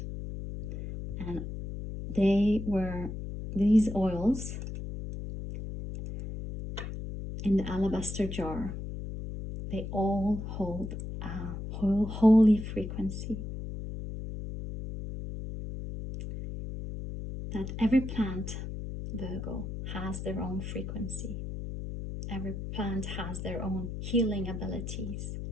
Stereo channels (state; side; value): noise; left; hum, 6 dB below the sound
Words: And these oils in the alabaster jar, they all hold a holy frequency. That every plant, Virgo, has their own frequency. Every plant has their own healing abilities